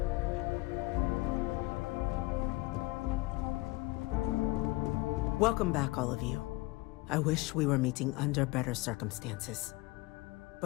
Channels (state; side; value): quieter; right; 21.4 dB